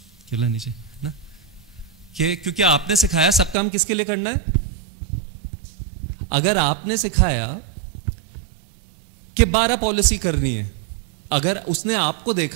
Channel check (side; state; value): left; drops out; at 3.6 s